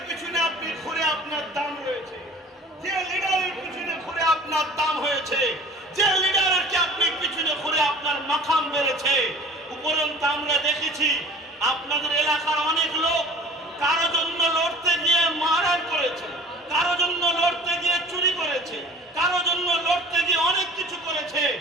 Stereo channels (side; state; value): both; normal; correlation 0.45